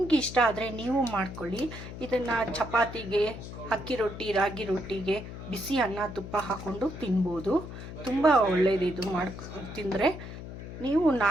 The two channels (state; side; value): noise; left; hum, 11 dB below the sound